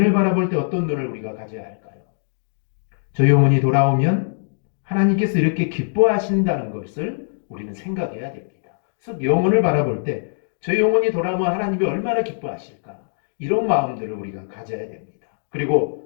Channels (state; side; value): silent; right; digital silence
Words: 바라볼 때 어떤 눈을 우리가 가져야 할까요? 저 영혼이 돌아오면 하나님께서 이렇게 기뻐하신다는 것을 우리는 생각해야 됩니다. 그래서 영혼을 바라볼 때 저 영혼이 돌아오면 하나님이 얼마나 기뻐하실까? 이런 마음들을 우리가 가져야 됩니다.